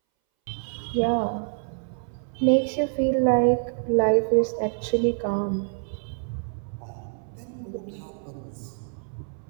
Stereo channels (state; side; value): silent; left; 61 dB below the other